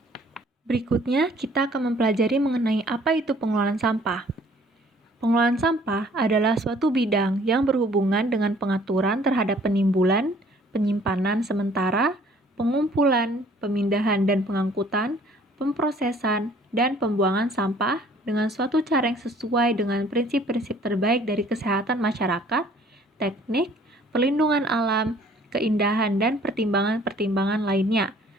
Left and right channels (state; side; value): normal; both; correlation 0.56